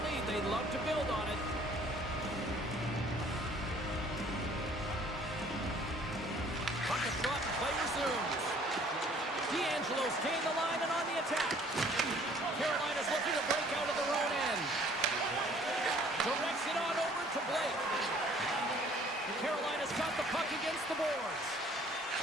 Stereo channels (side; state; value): both; normal; correlation 0.56